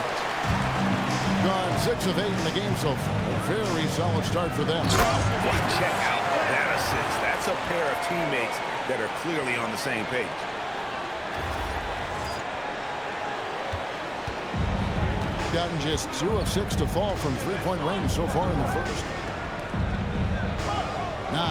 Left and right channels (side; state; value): both; identical; correlation 1.00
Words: Gone 6 of 8 in the game so far. A very solid start for them. Check out that assist. That's a pair of teammates that are clearly on the same page. Gotten just 2 of 6 to fall from 3-point range so far in the first.